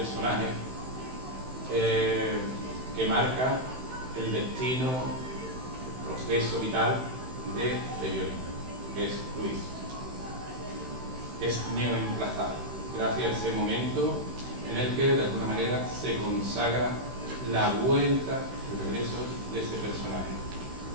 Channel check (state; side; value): late; left; 16 ms